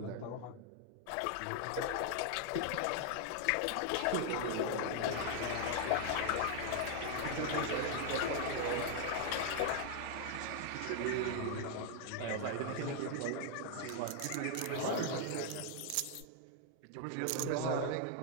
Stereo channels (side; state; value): both; different; correlation 0.00